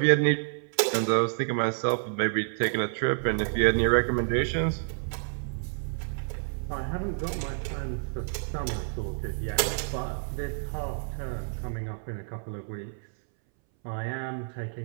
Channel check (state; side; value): silent; left; 59 dB below the other